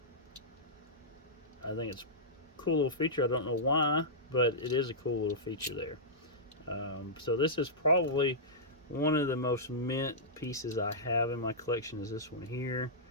I think it's a cool little feature. I don't know why, but it is a cool little feature there. So this is probably one of the most mint pieces I have in my collection, is this one here.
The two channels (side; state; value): both; normal; correlation -0.14